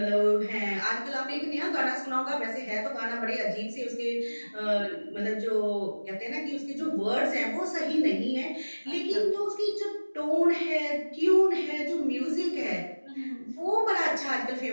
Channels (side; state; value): both; inverted; correlation -1.00